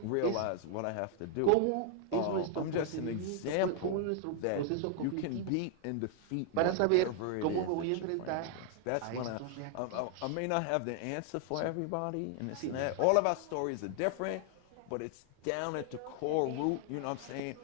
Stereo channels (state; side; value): different; both; correlation 0.00